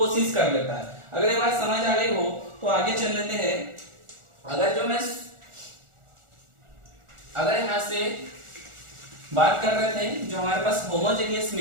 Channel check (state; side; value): late; left; 1.4 ms